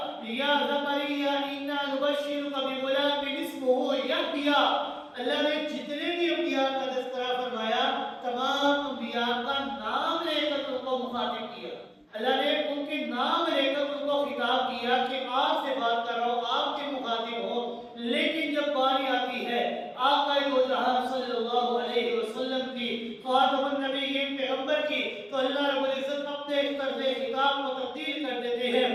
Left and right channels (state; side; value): identical; both; correlation 1.00